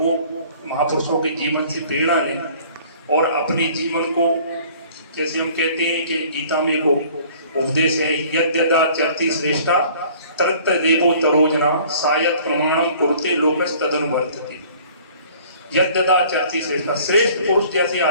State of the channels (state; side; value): inverted; both; correlation -0.52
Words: महापुरुषों के जीवन से प्रेरणा लें और अपने जीवन को, जैसे हम कहते हैं कि गीता में को उपदेश है, यद्यदा चरति श्रेष्ठा तत्त देवो तरोजना सायत प्रमाणम कुरुते लोकस तदनुवर्तते। यद्यदा चरति श्रेष्ठा, श्रेष्ठ पुरुष जैसे